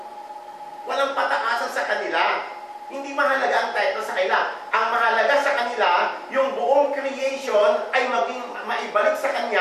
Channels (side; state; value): both; identical; correlation 1.00